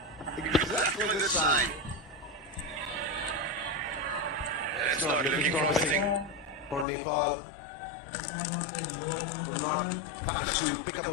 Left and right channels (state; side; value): drops out; right; at 6.9 s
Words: Exactly the same. It's not looking promising for Nepal. We're not managed to pick up